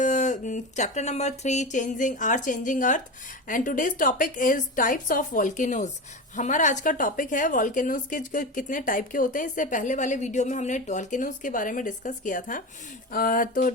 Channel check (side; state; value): both; normal; correlation 0.23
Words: chapter number 3 changing earth and today's topic is types of volcanoes. हमारा आज का topic है volcanoes के कितने type के होते हैं। इससे पहले वाले वीडियो में हमने वॉल्केनोज के बारे में डिस्कस किया था। तो